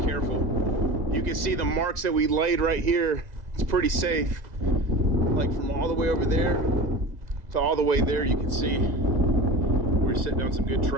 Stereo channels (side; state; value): left; late; 2.0 ms